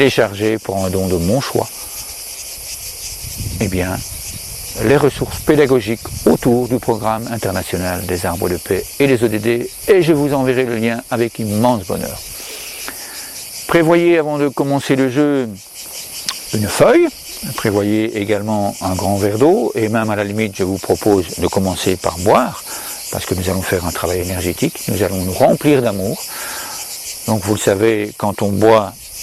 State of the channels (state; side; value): identical; both; correlation 1.00